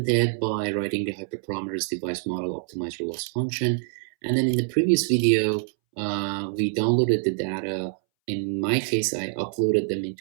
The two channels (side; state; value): left; silent; 61 dB below the other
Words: ahead by writing the hyperparameters device model optimizer loss function. And then in the previous video, we downloaded the data. In my case, I uploaded them